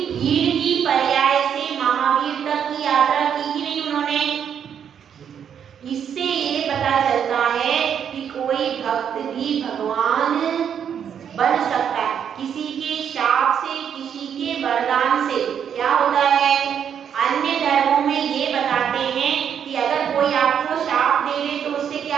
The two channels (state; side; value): quieter; left; 8.3 dB